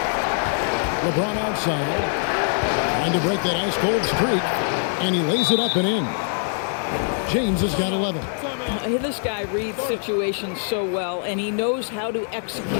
LeBron outside. Trying to break that ice-cold streak. And he lays it up and in. James has got 11. This guy reads situations so well, and he knows how to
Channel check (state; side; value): silent; right; 63 dB below the other